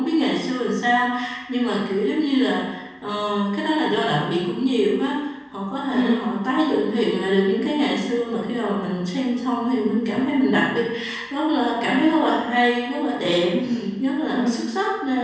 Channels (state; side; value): identical; both; correlation 1.00